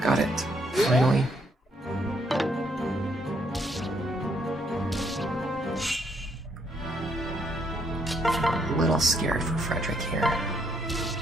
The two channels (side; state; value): both; normal; correlation 0.72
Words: Got it. Finally. A little scared for Frederick here.